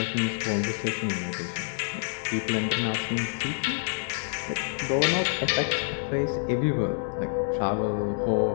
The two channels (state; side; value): silent; right; digital silence